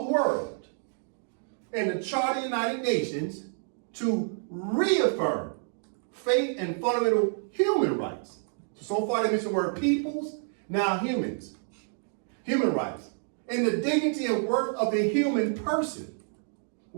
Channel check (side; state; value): left; silent; digital silence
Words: the world and the Charter of the United Nations to reaffirm faith and fundamental human rights. So far they mentioned the word peoples, now humans. Human rights. And the dignity and worth of the human person.